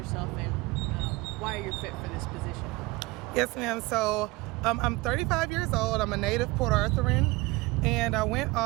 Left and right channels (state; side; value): quieter; left; 22.1 dB